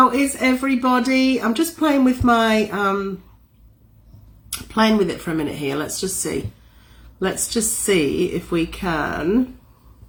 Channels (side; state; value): both; identical; correlation 1.00